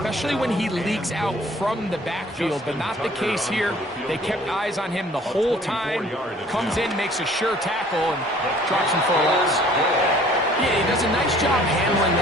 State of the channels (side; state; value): both; normal; correlation 0.54